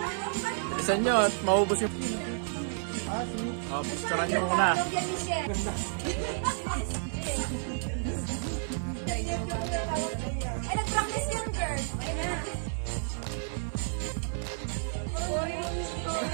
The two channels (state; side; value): silent; left; 57 dB below the other